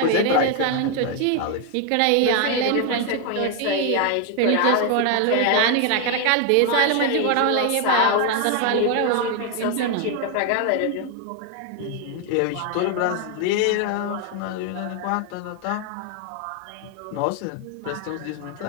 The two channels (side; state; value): both; different; correlation 0.01